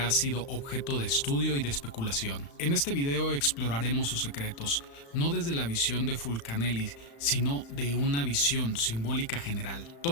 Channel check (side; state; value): right; late; 35 ms